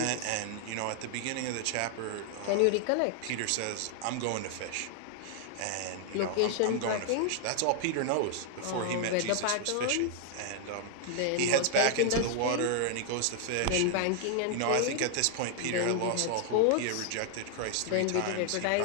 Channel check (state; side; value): different; both; correlation 0.00